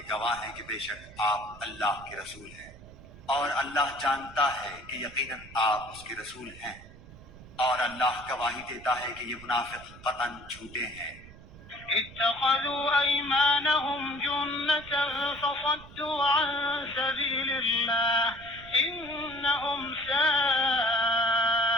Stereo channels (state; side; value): noise; right; rumble, 19 dB below the sound